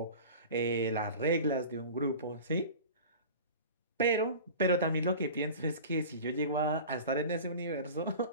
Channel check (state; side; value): inverted; both; correlation -0.37